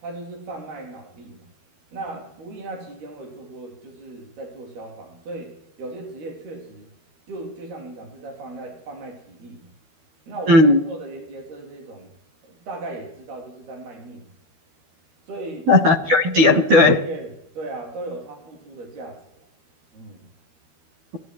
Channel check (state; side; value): late; left; 13 ms